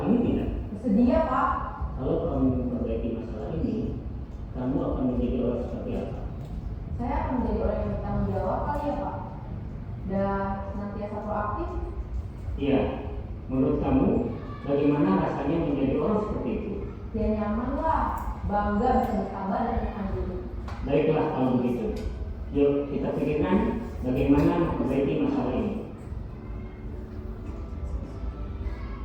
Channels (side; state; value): both; identical; correlation 1.00